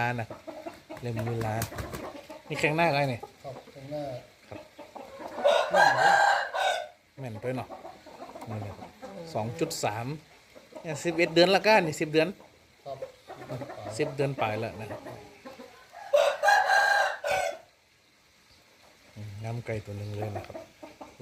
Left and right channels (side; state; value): both; identical; correlation 1.00